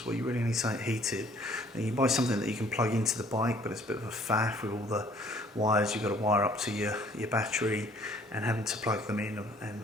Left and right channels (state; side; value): normal; both; correlation 0.58